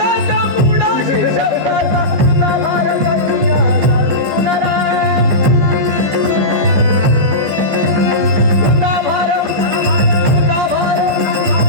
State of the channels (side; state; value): left; late; 15 ms